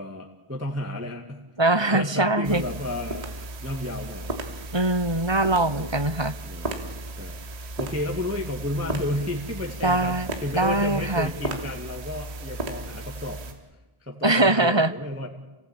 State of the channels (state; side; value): late; left; 1.2 ms